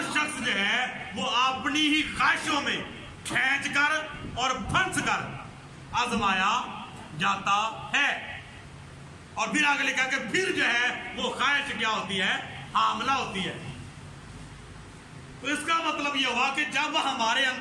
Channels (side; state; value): both; identical; correlation 1.00